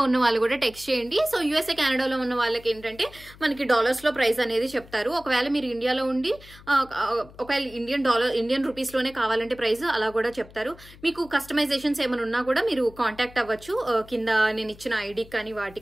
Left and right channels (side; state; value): left; noise; hum, 21 dB below the sound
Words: ఉన్న వాళ్ళు కూడా టెక్స్ట్ చేయండి. సో యూఎస్ఏ కెనడాలో ఉన్న వాళ్ళకి ఏంటంటే మనకి డాలర్స్ లో ప్రైస్ అనేది చెప్తారు. ఒకవేళ మీరు ఇండియాలో ఉండి ఒకవేళ ఇండియన్ రూపీస్ లోనే కావాలంటే ప్రైస్ అలా కూడా చెప్తారు. మీకు కస్టమైజేషన్స్ ఏమైనా ఉన్నా కూడా మీరు కాంటాక్ట్ అవ్వచ్చు కింద నేను ఇచ్చిన ఐడి కానీ